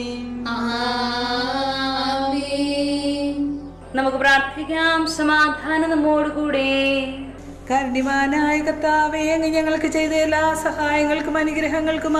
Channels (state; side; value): identical; both; correlation 1.00